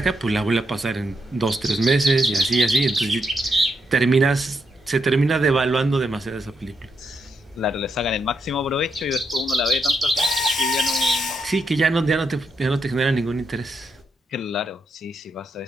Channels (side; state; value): both; normal; correlation 0.81